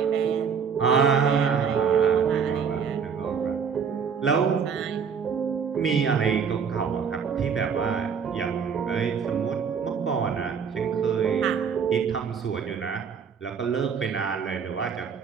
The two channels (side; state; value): left; quieter; 6.6 dB